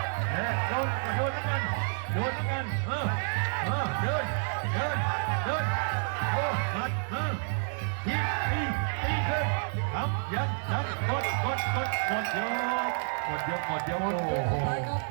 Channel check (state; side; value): silent; left; 58 dB below the other